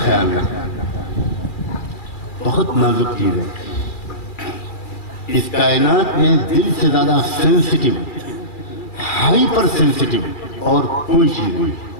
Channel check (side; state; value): right; late; 2.3 ms